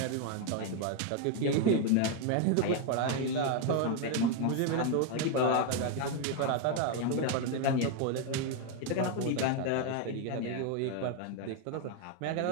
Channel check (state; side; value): different; both; correlation 0.01